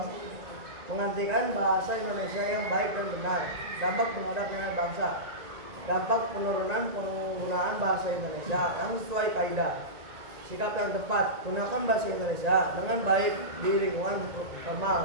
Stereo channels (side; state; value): left; late; 1.9 ms